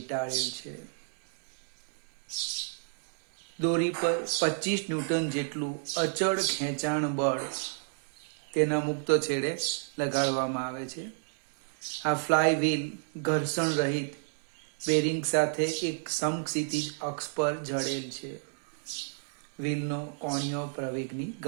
છે. દોરી પર 25 ન્યૂટન જેટલું અચળ ખેંચાણ બળ તેના મુક્ત છેડે લગાડવામાં આવે છે. આ ફ્લાય વ્હીલ ઘર્ષણ રહિત બેરિંગ સાથે એક સમક્ષિતિજ અક્ષ પર જડેલ છે. વ્હીલનો કોણીય પ્રવેગની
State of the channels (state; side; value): silent; left; 57 dB below the other